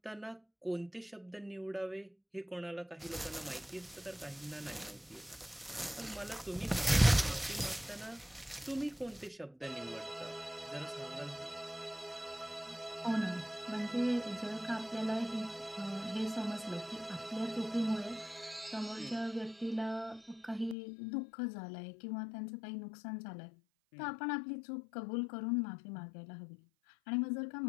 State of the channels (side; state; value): right; drops out; at 20.8 s